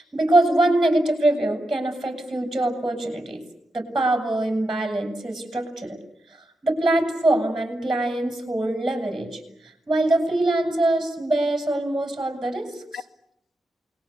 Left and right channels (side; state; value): both; normal; correlation 0.87